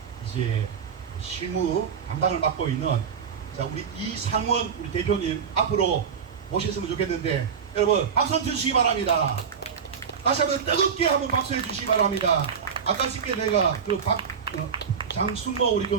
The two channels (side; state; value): left; quieter; 6.7 dB